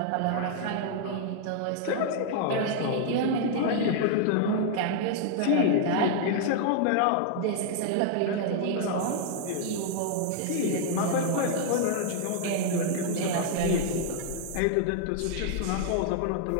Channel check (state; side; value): different; both; correlation 0.00